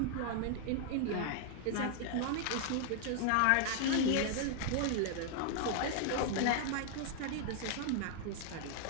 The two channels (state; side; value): different; both; correlation 0.00